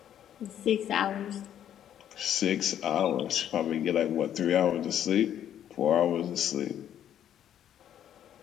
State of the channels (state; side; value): quieter; right; 10.4 dB